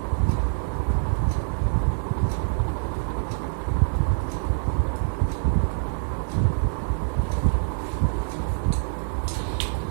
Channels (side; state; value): left; silent; 62 dB below the other